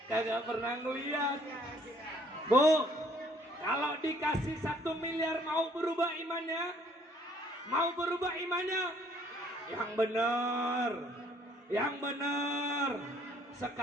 Kagak pernah ngeliat. Bu, kalau dikasih 1 miliar mau berubah imannya? Mau berubah imannya? Yang benar. Yang benar.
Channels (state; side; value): normal; both; correlation 0.62